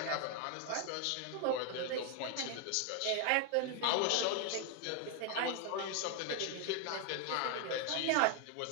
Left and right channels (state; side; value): different; both; correlation 0.01